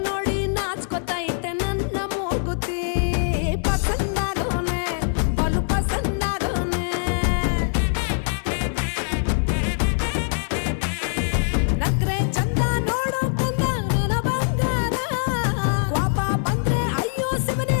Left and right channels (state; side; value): silent; right; 63 dB below the other